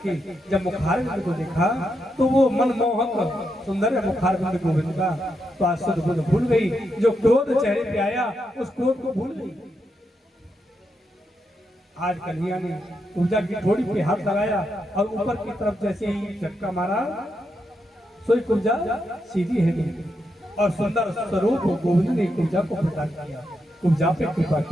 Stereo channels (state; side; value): normal; both; correlation 0.83